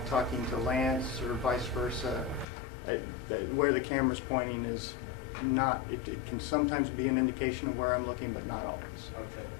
talking to Lance or vice versa. Where the camera's pointing is not, it can sometimes be an indication of where I'm looking, but not always. Okay.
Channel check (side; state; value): right; drops out; at 2.5 s